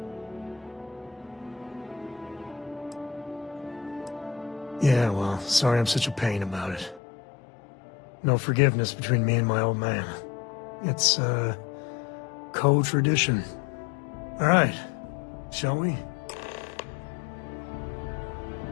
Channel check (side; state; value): right; drops out; at 7.0 s